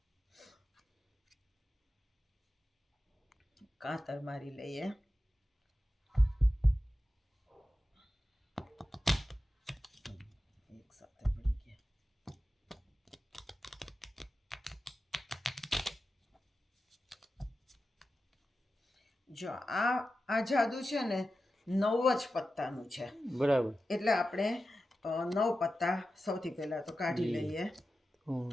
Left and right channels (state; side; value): normal; both; correlation 0.92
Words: કાતર મારી લઈએ. એક સાથે પડી ગયા. જો આ જાદુ છે ને 9 જ પત્તાનું છે. બરાબર. એટલે આપણે 9 પત્તા સૌથી પહેલા તો કાઢી લઈએ.